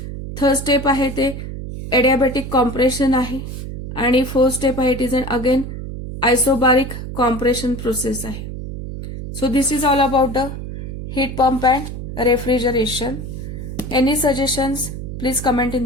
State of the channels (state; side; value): noise; right; hum, 8 dB below the sound